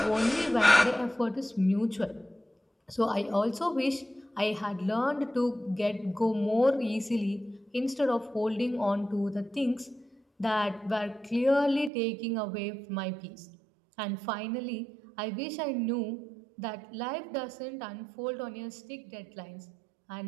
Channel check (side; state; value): left; drops out; at 11.9 s